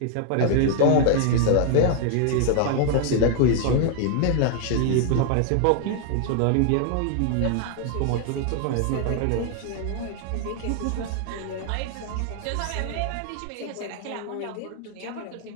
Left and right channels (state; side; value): different; both; correlation 0.00